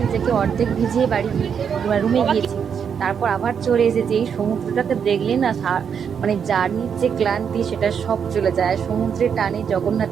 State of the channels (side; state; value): left; quieter; 7.2 dB